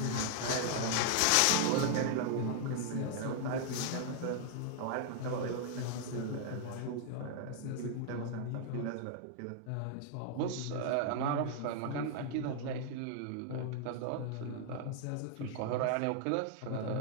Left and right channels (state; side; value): different; both; correlation 0.00